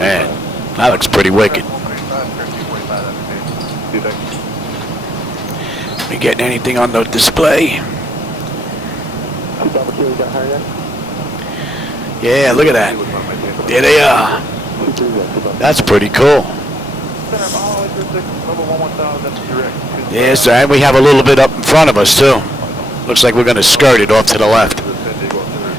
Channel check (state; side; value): normal; both; correlation 0.72